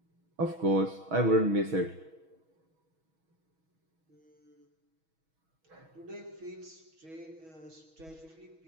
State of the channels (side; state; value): left; late; 6.2 ms